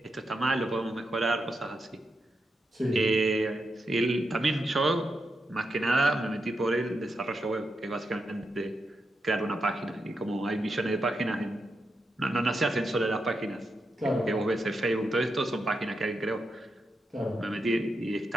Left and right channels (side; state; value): both; normal; correlation 0.85